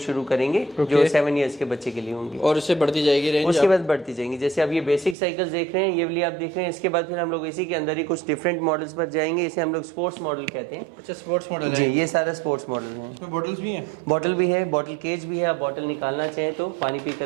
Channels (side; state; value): left; drops out; at 5.2 s